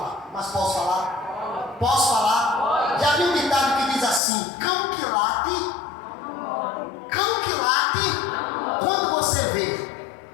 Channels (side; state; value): right; drops out; at 4.2 s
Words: Mas posso falar? Posso falar? Já vi um ditado que diz assim: cão que late, quando você vê